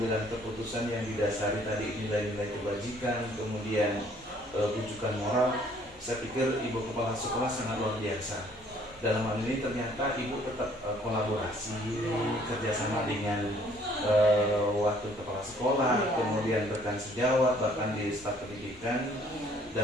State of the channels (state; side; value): normal; both; correlation 0.60